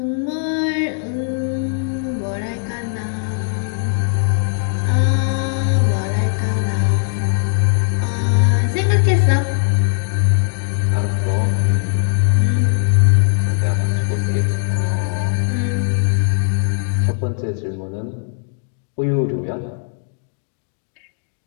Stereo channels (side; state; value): right; silent; digital silence